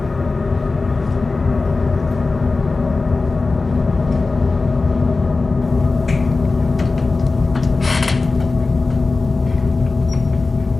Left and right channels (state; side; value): quieter; right; 3.7 dB